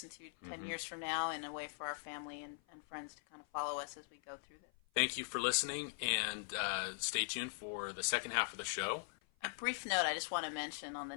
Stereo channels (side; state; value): right; silent; 50 dB below the other